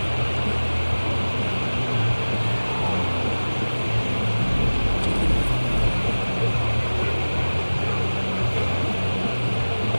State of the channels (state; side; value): inverted; both; correlation -1.00